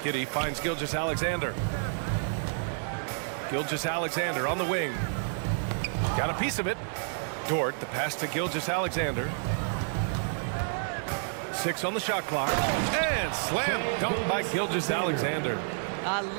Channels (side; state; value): left; silent; 58 dB below the other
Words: Giddey finds Gilgeous-Alexander. Gilgeous-Alexander on the wing. Got a piece of it. Dort, the pass to Gilgeous-Alexander. 6 on the shot clock. And slam dunk by Gilgeous-Alexander. I